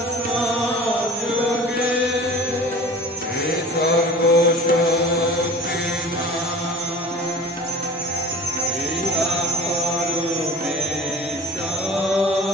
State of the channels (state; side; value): normal; both; correlation 0.43